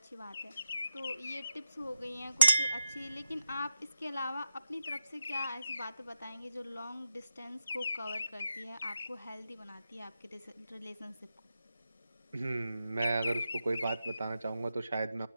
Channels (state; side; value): inverted; both; correlation -0.89